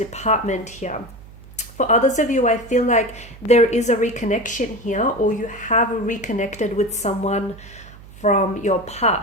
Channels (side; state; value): right; noise; hum, 19 dB below the sound